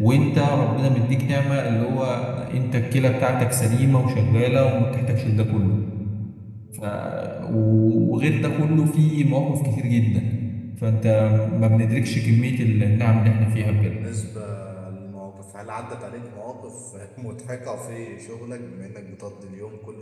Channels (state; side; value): identical; both; correlation 1.00